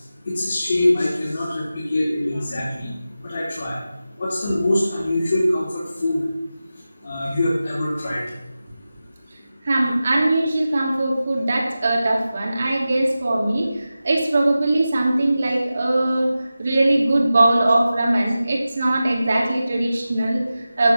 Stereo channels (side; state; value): both; inverted; correlation -0.94